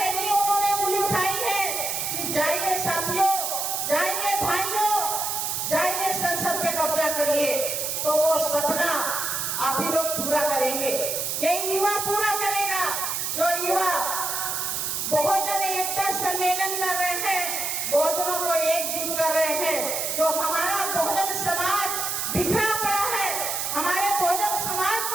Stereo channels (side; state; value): right; noise; hiss, 1 dB below the sound